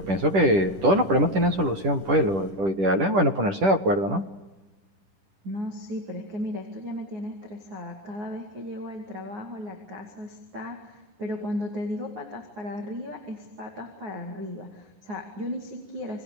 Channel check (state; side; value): late; left; 10 ms